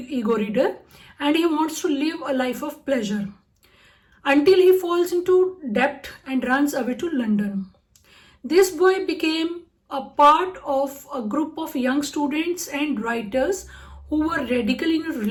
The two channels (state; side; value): identical; both; correlation 1.00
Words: reader, and he wants to live a life of pleasure until he falls into debt and runs away to London. This boy became a part of a group of young students and writers who were radical in